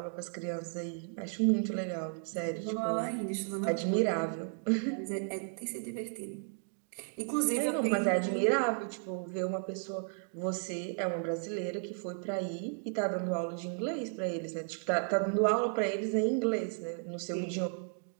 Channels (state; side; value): silent; left; 55 dB below the other